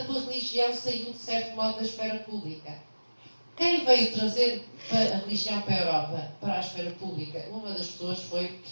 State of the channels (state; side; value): inverted; both; correlation -1.00